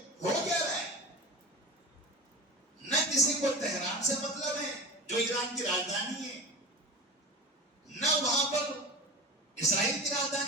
ہو کیا رہا ہے۔ نہ کسی کو تہران سے مطلب ہے جو ایران کی راجدھانی ہے، نہ وہاں پر اسرائیل کی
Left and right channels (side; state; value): both; normal; correlation 0.29